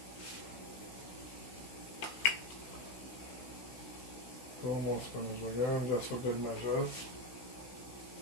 Almost spinach again, just for good measure.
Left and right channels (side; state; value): right; late; 16 ms